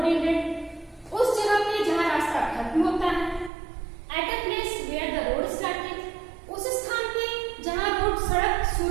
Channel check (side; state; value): left; drops out; at 3.5 s